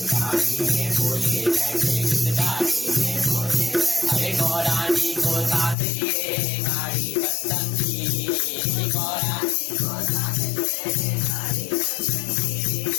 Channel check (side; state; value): right; drops out; at 5.8 s